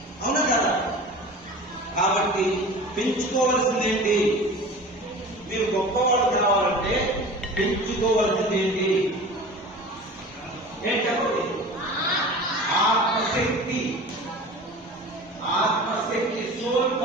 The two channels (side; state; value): both; normal; correlation 0.37